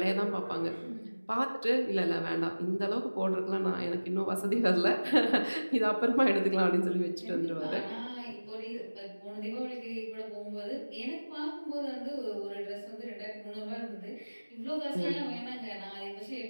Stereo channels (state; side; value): inverted; both; correlation -1.00